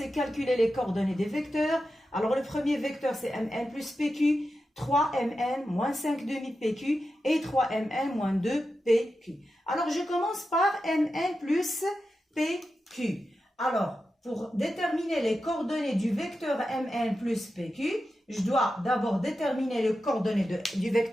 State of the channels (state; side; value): normal; both; correlation 0.91